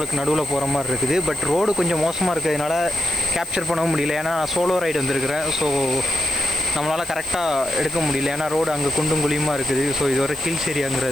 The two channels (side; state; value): left; noise; hiss, 16 dB below the sound